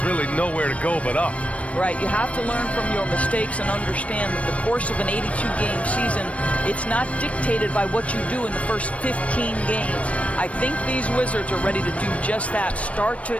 really nowhere to go but up. Right, you have to learn from your mistakes and understand that the course of an 82-game season, it's not dictated by what you do in the first 15 games. I think these Wizards are ready to do just that, start to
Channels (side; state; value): right; late; 0.064 ms